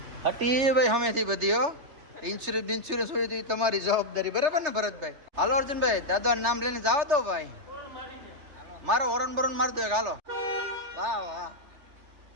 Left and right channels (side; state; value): left; late; 3.4 ms